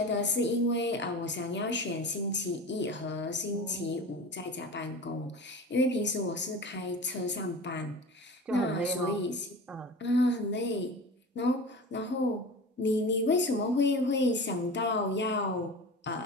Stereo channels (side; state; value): both; normal; correlation 0.34